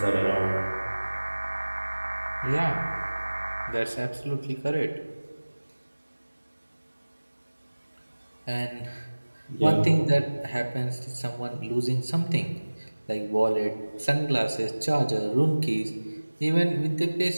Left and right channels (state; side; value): inverted; both; correlation -1.00